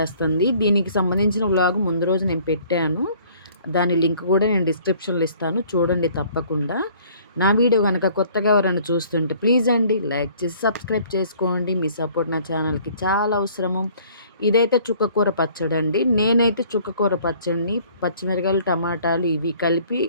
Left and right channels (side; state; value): both; inverted; correlation -0.56